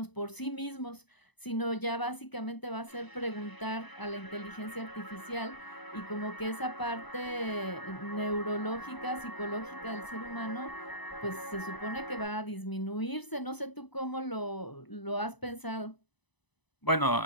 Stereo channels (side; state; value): right; late; 1.0 ms